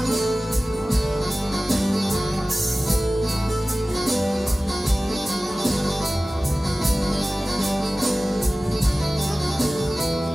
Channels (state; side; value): normal; both; correlation 0.97